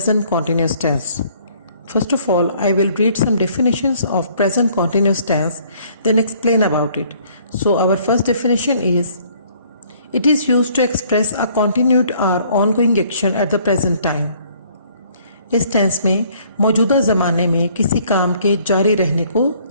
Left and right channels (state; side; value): inverted; both; correlation -0.61